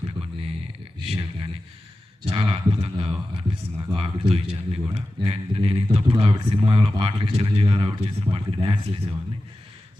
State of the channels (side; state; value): both; normal; correlation 0.94